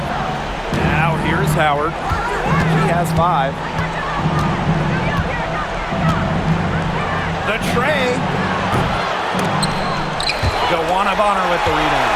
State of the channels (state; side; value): identical; both; correlation 1.00